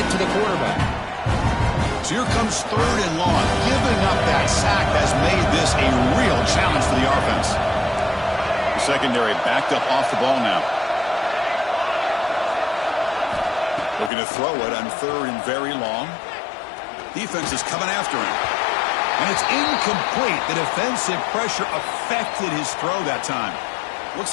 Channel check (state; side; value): drops out; right; at 14.1 s